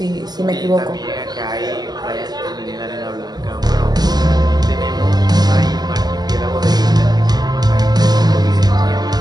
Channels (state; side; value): late; left; 0.20 ms